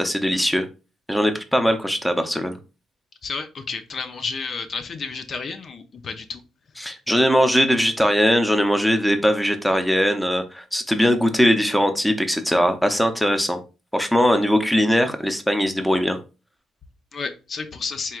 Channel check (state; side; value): normal; both; correlation 0.93